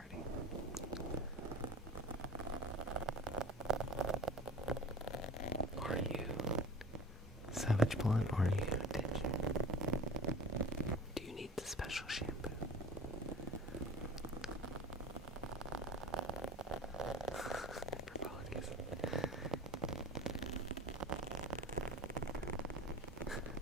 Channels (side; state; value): both; normal; correlation 0.38